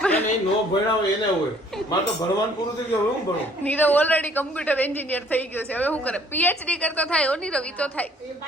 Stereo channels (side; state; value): both; normal; correlation 0.59